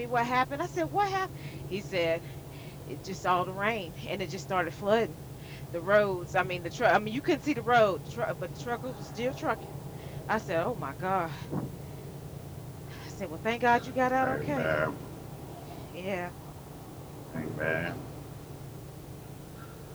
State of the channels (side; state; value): both; identical; correlation 1.00